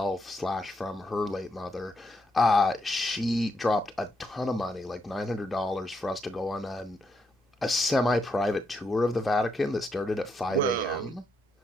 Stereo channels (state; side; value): normal; both; correlation 0.79